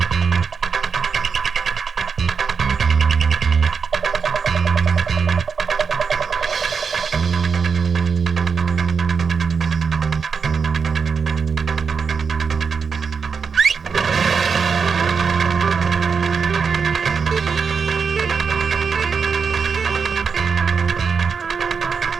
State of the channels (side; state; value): left; quieter; 5.7 dB